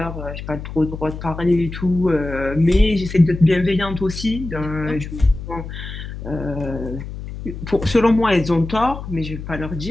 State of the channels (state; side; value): noise; left; hum, 9 dB below the sound